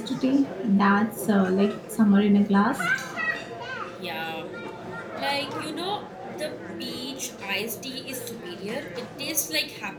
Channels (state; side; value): identical; both; correlation 1.00